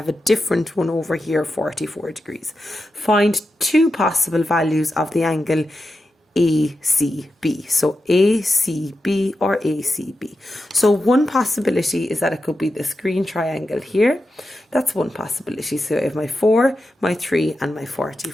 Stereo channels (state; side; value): normal; both; correlation 0.90